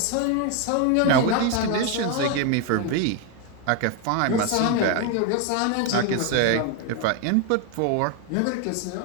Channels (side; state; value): both; different; correlation 0.01